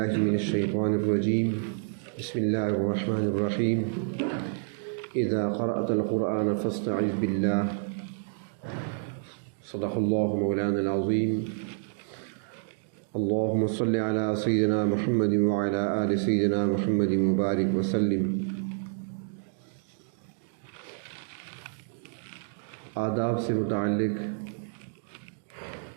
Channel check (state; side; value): silent; left; digital silence